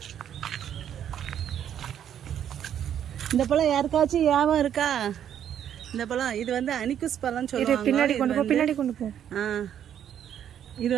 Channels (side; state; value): left; quieter; 9.7 dB